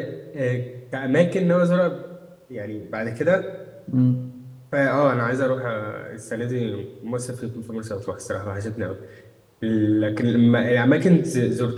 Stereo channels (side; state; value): both; identical; correlation 1.00